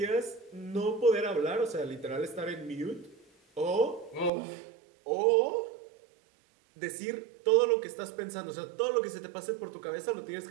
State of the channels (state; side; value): drops out; left; at 4.3 s